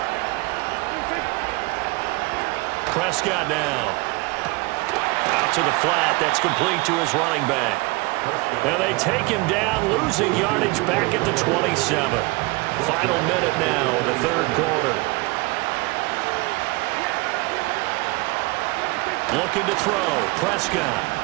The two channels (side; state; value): left; quieter; 24.4 dB